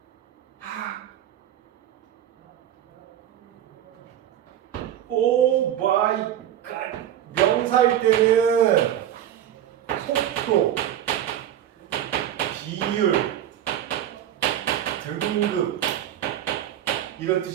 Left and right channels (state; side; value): quieter; left; 11.1 dB